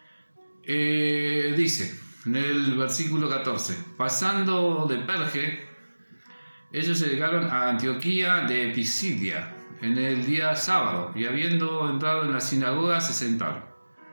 dice en el versículo 14: pasando de Perge, ellos llegaron a Antioquía de Pisidia en el día sábado, y habiendo entrado en la sinagoga se sentaron.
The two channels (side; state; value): both; inverted; correlation -1.00